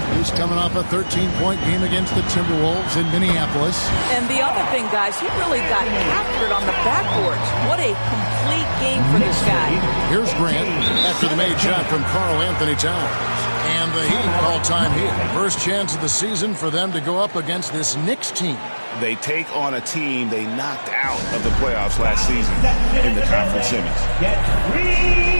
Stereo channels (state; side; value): inverted; both; correlation -1.00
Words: He's coming off a 13-point game against the Timberwolves in Minneapolis. And the other thing, guys, he really got after it on the backboards. What a complete game for this guy. Here's Grant after the made shot from Karl Anthony Towns. And the Heat call time here. First chance of the season for them to go up against this Knicks team. They take on a team they knocked out of the playoffs last season in the conference semis. Get 3